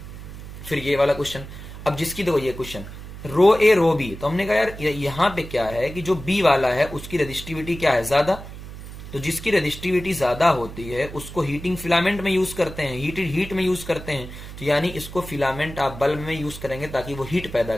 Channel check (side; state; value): right; noise; hum, 12 dB below the sound